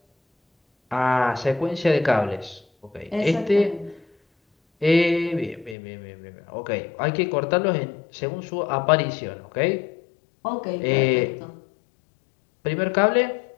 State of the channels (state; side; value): drops out; right; at 5.8 s